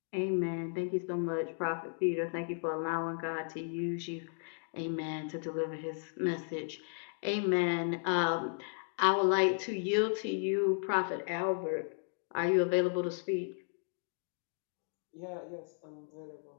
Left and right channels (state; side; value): silent; right; digital silence